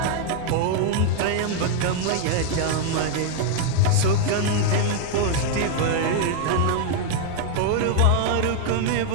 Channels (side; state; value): both; different; correlation 0.00